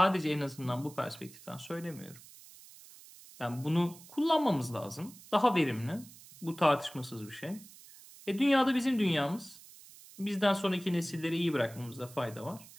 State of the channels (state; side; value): noise; right; hiss, 20 dB below the sound